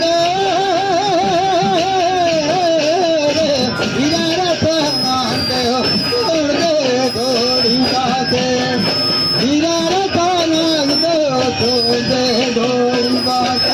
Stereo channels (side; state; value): both; identical; correlation 1.00